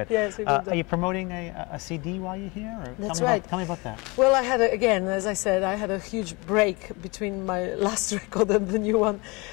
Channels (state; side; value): quieter; right; 26.9 dB